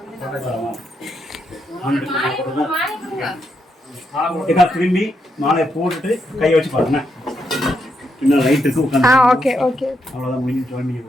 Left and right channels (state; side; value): normal; both; correlation 0.80